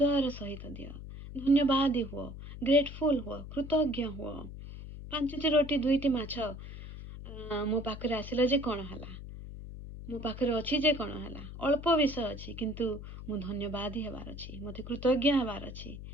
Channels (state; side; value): noise; left; hum, 11 dB below the sound